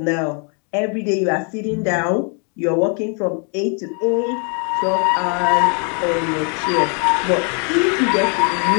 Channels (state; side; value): quieter; right; 38.0 dB